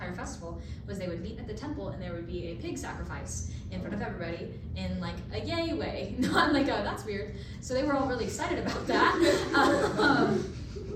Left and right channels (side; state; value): both; identical; correlation 1.00